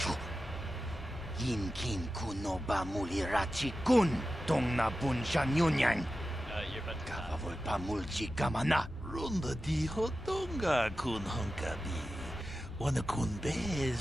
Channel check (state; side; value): normal; both; correlation 0.93